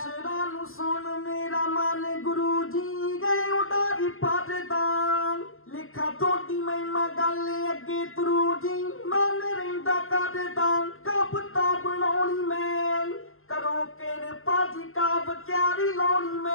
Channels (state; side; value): late; right; 0.61 ms